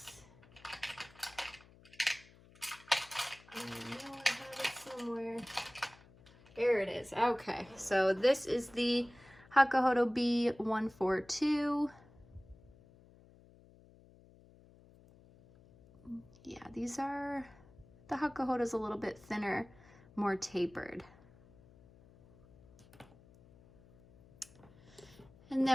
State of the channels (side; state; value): left; noise; hum, 25 dB below the sound